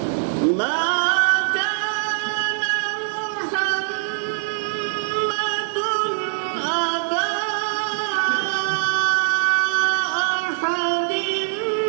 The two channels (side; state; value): left; silent; 64 dB below the other